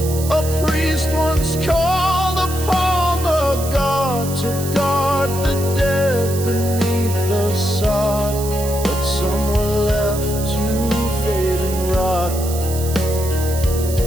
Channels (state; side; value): noise; right; hiss, 10 dB below the sound